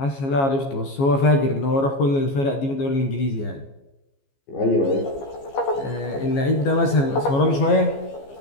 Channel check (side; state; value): right; late; 15 ms